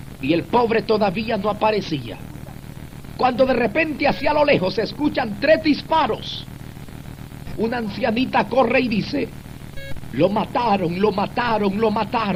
y el pobre todavía no aparecía. Cuando de repente hacia lo lejos se escuchan 3 disparos, una ancianita corre y dice: lo mataron, lo mataron, lo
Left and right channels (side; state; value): both; identical; correlation 1.00